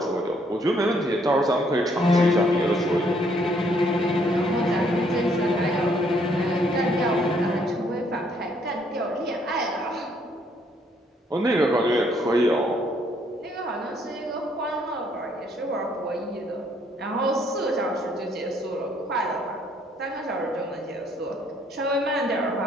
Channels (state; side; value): normal; both; correlation 0.67